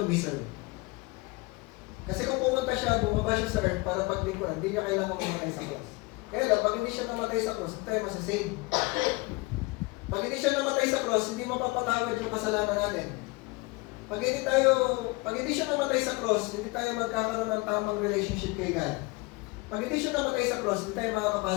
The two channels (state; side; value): quieter; right; 25.2 dB